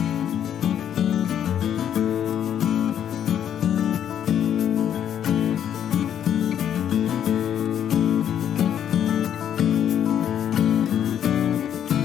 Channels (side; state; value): right; quieter; 9.6 dB